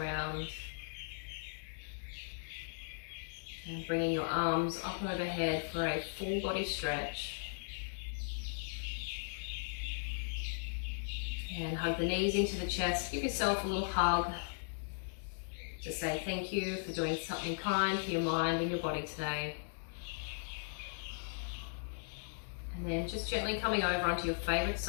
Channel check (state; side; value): silent; right; digital silence